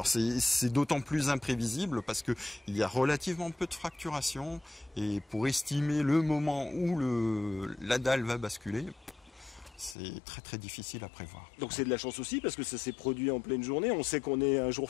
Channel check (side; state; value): right; drops out; at 10.0 s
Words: c'est d'autant plus imprévisible parce qu'il y a relativement peu de fracturation et pour estimer le moment où la dalle va basculer, c'est très très difficile à prévoir. Donc c'est de la chance aussi parce que ça s'est produit en pleine journée. On sait qu'on est un